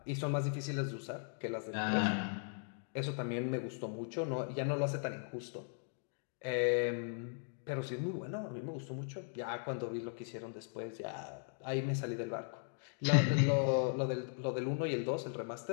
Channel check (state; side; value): silent; right; digital silence